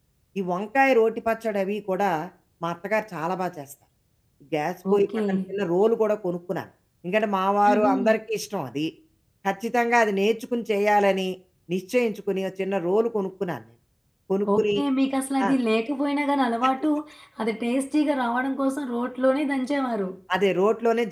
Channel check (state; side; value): identical; both; correlation 1.00